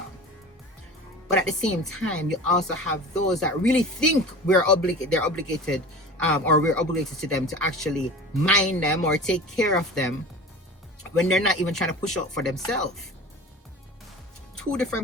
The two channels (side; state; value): both; normal; correlation 0.36